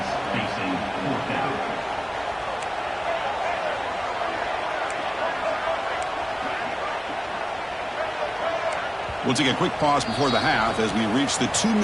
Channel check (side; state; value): both; identical; correlation 1.00